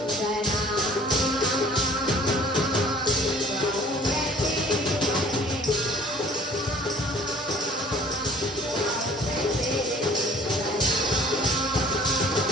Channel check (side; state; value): both; normal; correlation 0.50